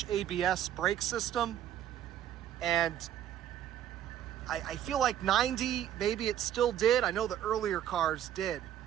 ABS brake system, and I feel like 90, maybe it still did. I know the earlier cars did.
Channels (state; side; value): quieter; left; 11.0 dB